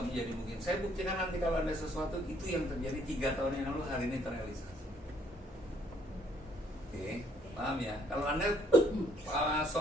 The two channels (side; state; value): both; normal; correlation 0.66